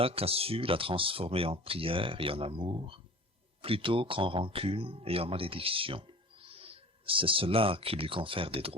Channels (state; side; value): normal; both; correlation 0.41